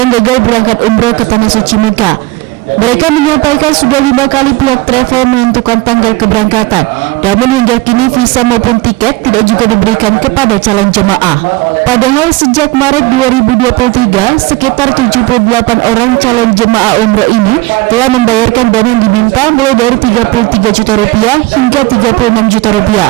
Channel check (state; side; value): quieter; left; 20.9 dB